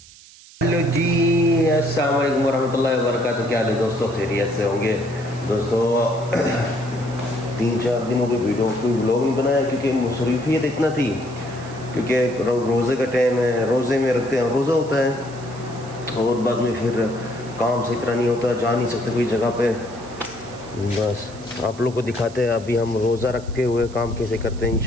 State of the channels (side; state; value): right; noise; hiss, 21 dB below the sound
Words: हेलो जी, अस्सलाम वालेकुम वरहमतुल्लाहि वबरकातुहू। क्या हाल है दोस्तों, खैरियत से होंगे दोस्तों। 3-4 दिनों कोई वीडियो कोई व्लॉग नहीं बनाया क्योंकि मसरूफियत इतना थी, क्योंकि रोज़े का टाइम है, रोज़े में रखते हैं, रोज़ा होता है और बाद में फिर काम से इतना नहीं होता, जा नहीं सकते कोई जगह पे। बस आप लोग को दिखाते हैं अभी हम रोज़ा रखते हुए काम कैसे करते हैं,